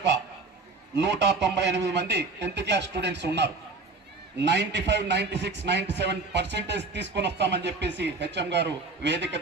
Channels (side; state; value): left; quieter; 3.7 dB